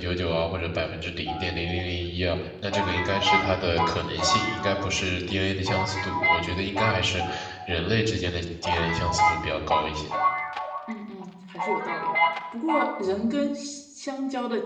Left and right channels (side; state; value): both; identical; correlation 1.00